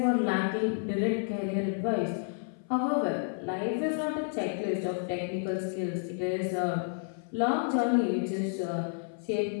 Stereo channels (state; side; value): silent; right; 55 dB below the other